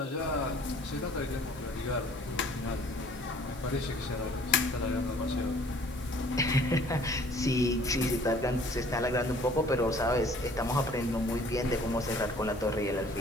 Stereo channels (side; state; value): right; noise; hiss, 22 dB below the sound